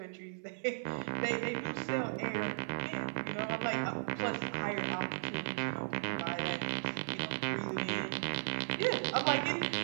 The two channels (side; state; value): left; silent; 54 dB below the other